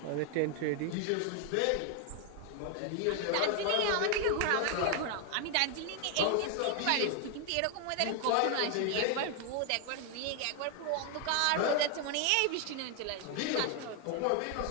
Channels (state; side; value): different; both; correlation 0.00